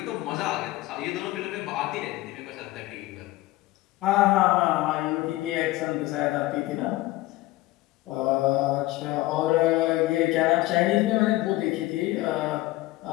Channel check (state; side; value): quieter; right; 18.1 dB